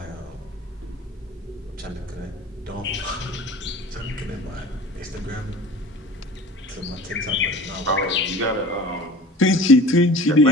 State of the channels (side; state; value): both; normal; correlation 0.41